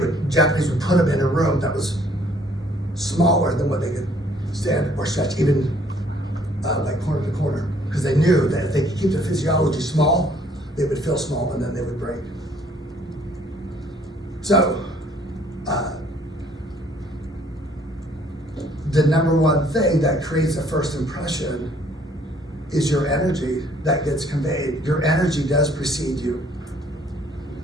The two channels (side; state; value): both; normal; correlation 0.61